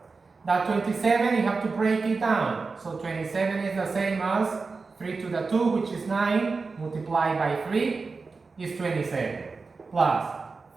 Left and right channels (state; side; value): quieter; left; 4.3 dB